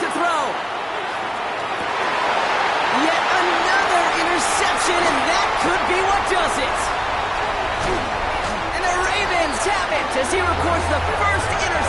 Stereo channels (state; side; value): identical; both; correlation 1.00